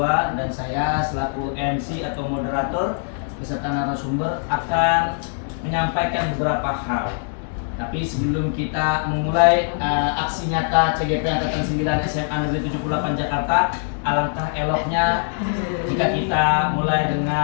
dan saya selaku MC atau moderator beserta narasumber akan menyampaikan beberapa hal. Tapi sebelum kita memulai aksi nyata CGP Angkatan 9 SMA Negeri 78 Jakarta, alangkah eloknya jika kita mulai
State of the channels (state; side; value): silent; right; 64 dB below the other